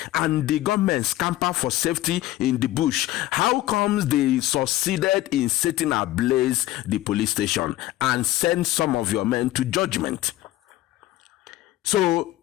and the government scamper for safety in the bush, how comes they succeeded in setting ablaze the police station and send some of your men to Judgement? So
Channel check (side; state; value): right; quieter; 15.5 dB